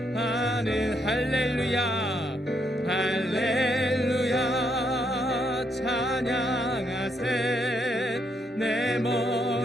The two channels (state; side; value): normal; both; correlation 0.75